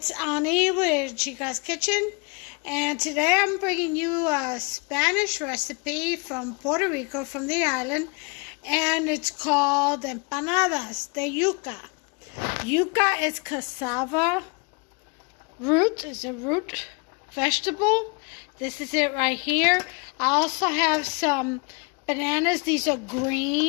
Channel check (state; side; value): quieter; right; 32.7 dB